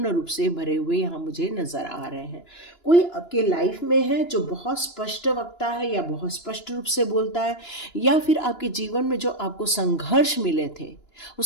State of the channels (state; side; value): late; right; 2.9 ms